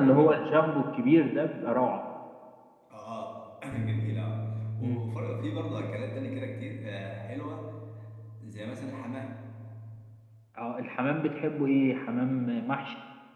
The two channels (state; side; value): identical; both; correlation 1.00